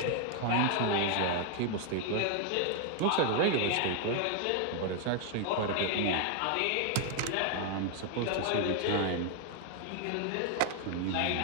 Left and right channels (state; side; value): different; both; correlation 0.00